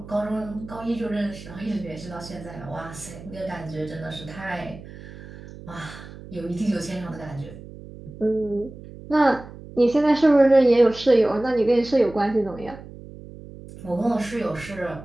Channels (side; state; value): right; noise; hum, 16 dB below the sound